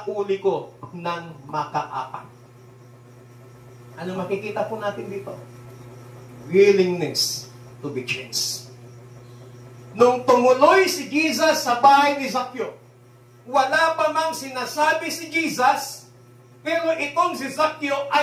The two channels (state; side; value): identical; both; correlation 1.00